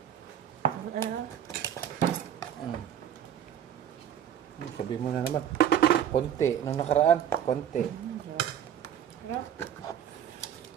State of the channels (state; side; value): quieter; left; 9.8 dB